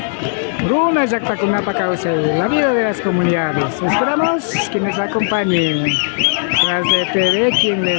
Runa Yactacunapa Cauce, la vida de las comunidades. Esperamos que nos acompañen. Tras de TV, quien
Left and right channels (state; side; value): silent; right; 69 dB below the other